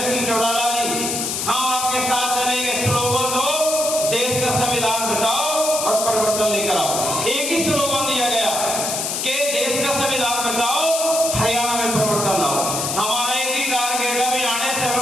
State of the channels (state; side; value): noise; left; hiss, 2 dB below the sound